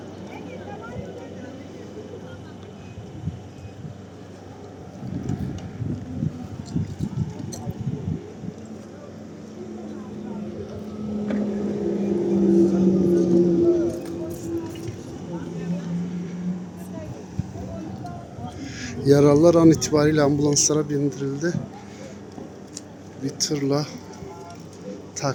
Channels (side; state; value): both; identical; correlation 1.00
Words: Yaralılar an itibariyle ambulanslara bindirildi. Bir tırla